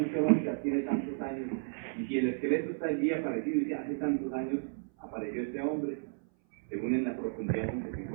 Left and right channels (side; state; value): left; silent; 56 dB below the other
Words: geológica tiene tantos años, y si el esqueleto está allí aparecido, dice, hace tantos años apareció este hombre, según en la profundidad en que se